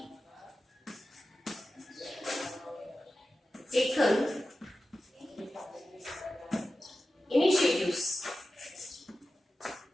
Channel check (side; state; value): both; normal; correlation 0.94